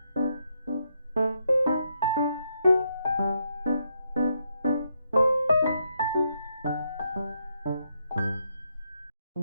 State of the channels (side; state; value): both; inverted; correlation -0.79